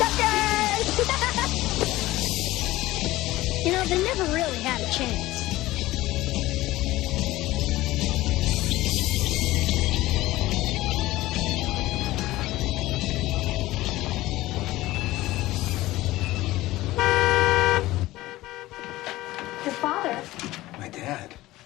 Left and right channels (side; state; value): right; quieter; 17.5 dB